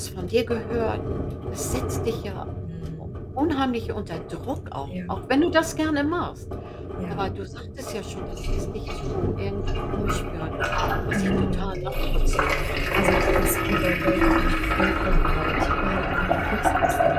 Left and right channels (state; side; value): identical; both; correlation 1.00